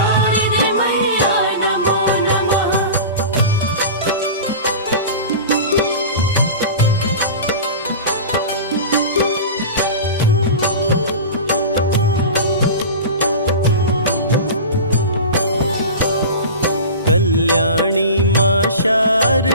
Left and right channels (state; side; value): inverted; both; correlation -0.31